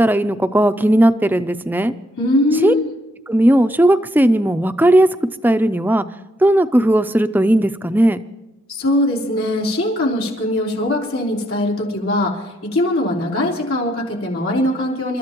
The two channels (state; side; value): normal; both; correlation 0.76